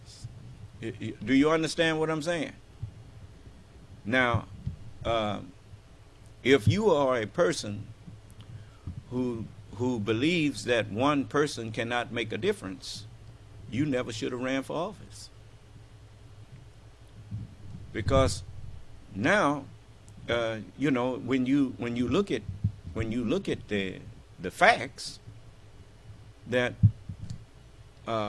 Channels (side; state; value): both; identical; correlation 1.00